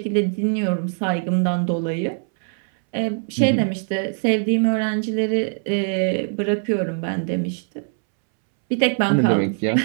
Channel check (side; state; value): left; silent; 64 dB below the other